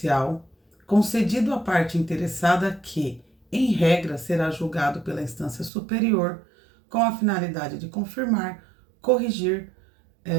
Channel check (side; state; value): left; drops out; at 5.7 s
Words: concedido à parte interessada que, em regra, será julgado pela instância superior com a finalidade de confirmar, corrigir,